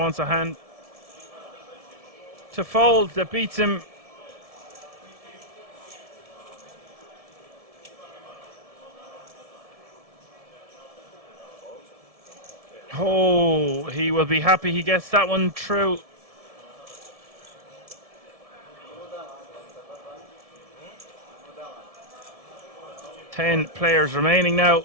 a hand to fold that beats him. Oh, he will be happy he gets that one through. Ten players remaining now.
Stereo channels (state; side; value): late; left; 1.7 ms